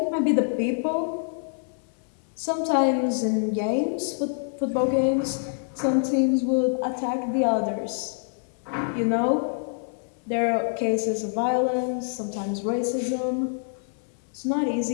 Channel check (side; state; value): right; silent; 61 dB below the other